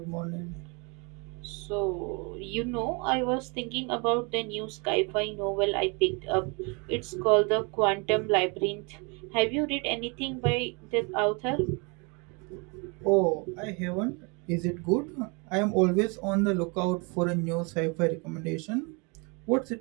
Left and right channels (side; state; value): left; quieter; 31.3 dB